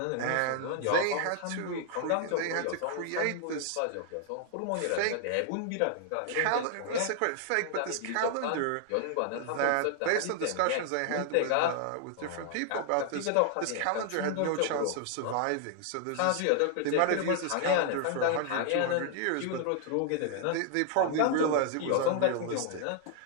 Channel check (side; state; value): both; different; correlation 0.00